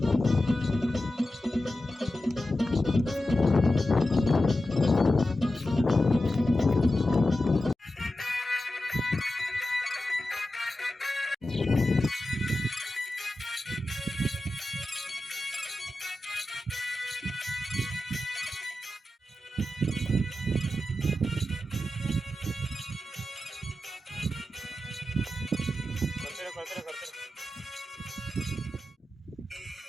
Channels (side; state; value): both; normal; correlation 0.92